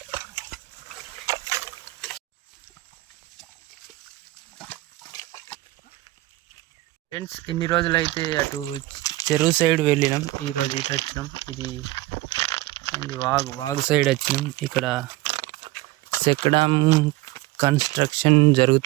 ఫ్రెండ్స్, ఇన్ని రోజులైతే అటు చెరువు సైడ్ వెళ్ళినాం. ఈరోజు ఇటు వచ్చినాం. ఇది వాగు సైడ్ వచ్చినాం. ఇక్కడ చెక్కడం కన్స్ట్రక్షన్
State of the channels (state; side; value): quieter; left; 18.4 dB